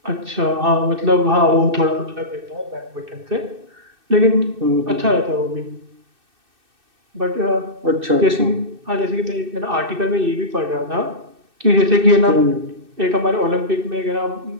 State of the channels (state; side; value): late; left; 2.6 ms